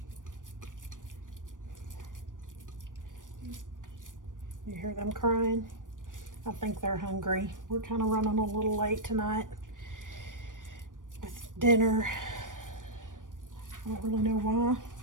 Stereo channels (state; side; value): late; left; 0.88 ms